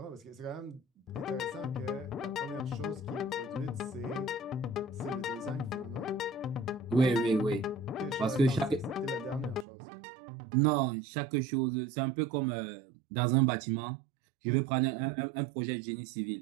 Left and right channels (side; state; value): left; drops out; at 9.7 s